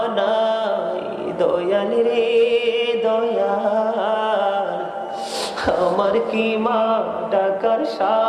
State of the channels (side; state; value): both; identical; correlation 1.00